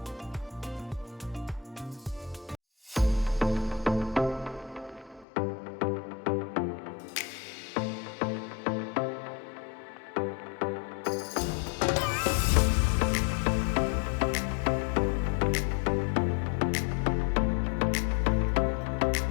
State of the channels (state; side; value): drops out; right; at 5.2 s